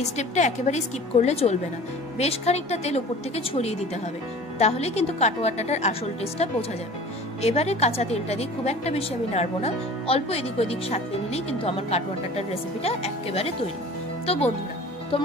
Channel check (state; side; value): normal; both; correlation 0.43